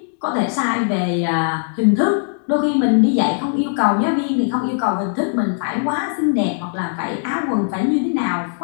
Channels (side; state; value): right; silent; digital silence